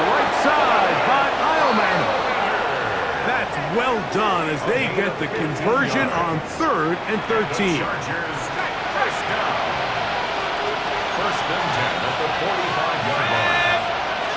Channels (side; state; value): both; identical; correlation 1.00